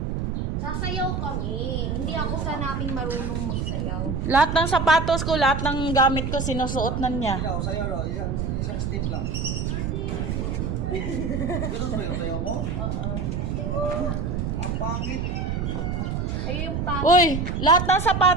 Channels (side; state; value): right; noise; rumble, 1 dB below the sound